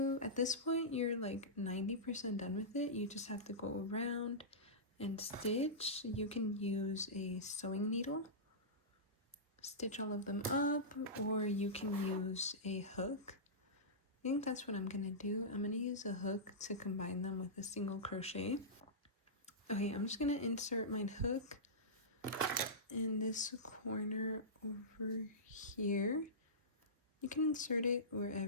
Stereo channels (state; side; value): normal; both; correlation -0.17